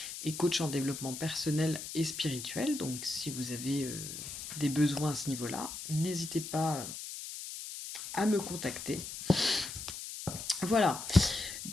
et coach en développement personnel et spirituel. Donc si vous avez des besoins à ce niveau-là, n'hésitez pas à me contacter. Voilà.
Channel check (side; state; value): left; noise; hiss, 8 dB below the sound